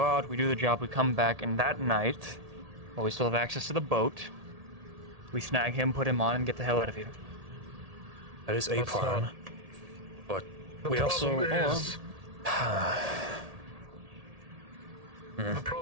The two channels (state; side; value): late; left; 1.8 ms